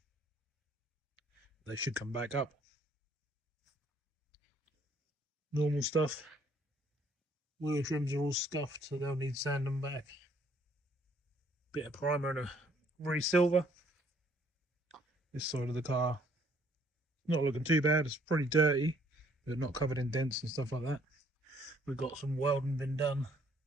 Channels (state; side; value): normal; both; correlation 0.63